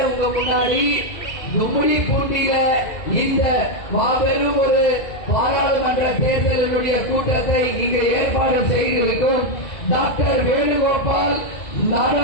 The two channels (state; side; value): late; right; 2.0 ms